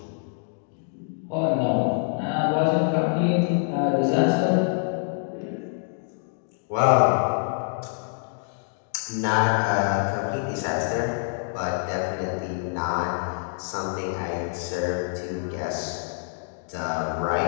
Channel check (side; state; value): right; silent; digital silence